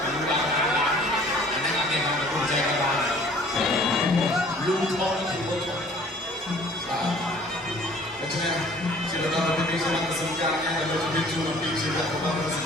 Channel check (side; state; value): both; normal; correlation 0.52